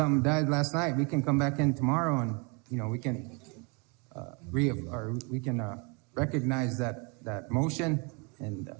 died last night, we can come back in tomorrow and, we can recognize that motion and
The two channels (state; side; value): quieter; left; 32.6 dB